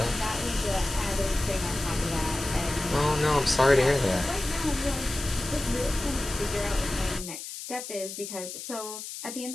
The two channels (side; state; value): left; noise; hiss, 9 dB below the sound